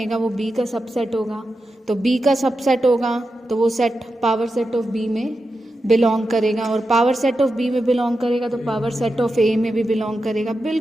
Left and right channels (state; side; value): normal; both; correlation 0.89